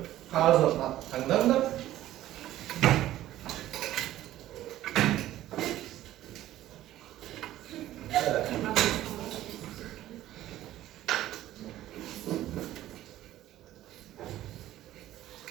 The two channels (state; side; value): quieter; left; 14.0 dB